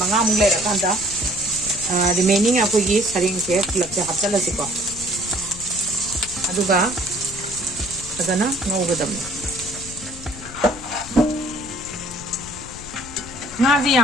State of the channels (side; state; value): left; noise; rumble, 15 dB below the sound